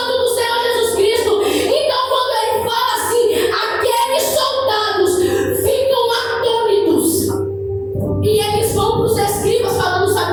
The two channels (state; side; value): identical; both; correlation 1.00